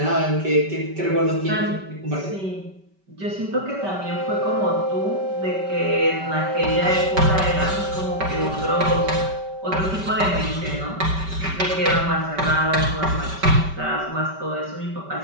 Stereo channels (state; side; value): late; left; 5.2 ms